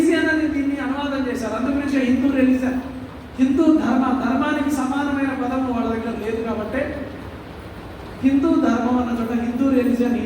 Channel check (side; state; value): both; identical; correlation 1.00